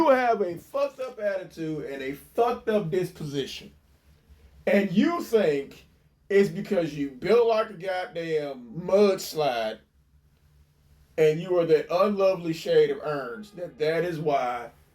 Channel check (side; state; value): both; identical; correlation 1.00